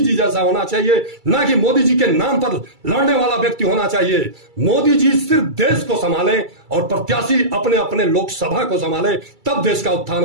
जैसा होना चाहिए, ना कि मोदी जी के नाम पर लड़ने वाला व्यक्ति होना चाहिए। मोदी जी सिर्फ देश को संभालें और प्रत्याशी अपने अपने लोकसभा को संभाले, तब देश का उत्थान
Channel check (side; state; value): left; late; 2.3 ms